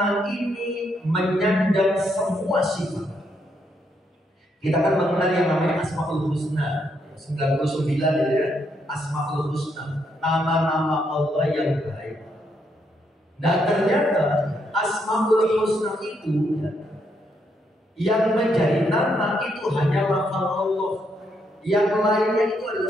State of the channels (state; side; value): normal; both; correlation 0.76